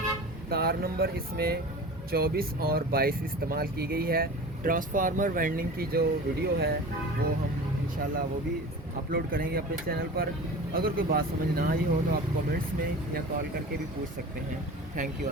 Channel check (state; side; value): normal; both; correlation 0.36